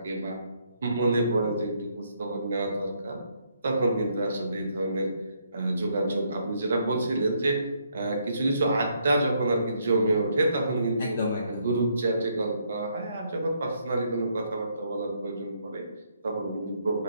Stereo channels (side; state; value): both; inverted; correlation -0.73